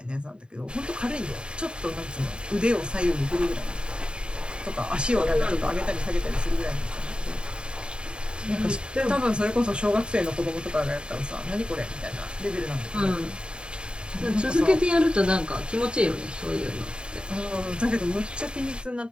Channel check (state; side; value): late; left; 0.051 ms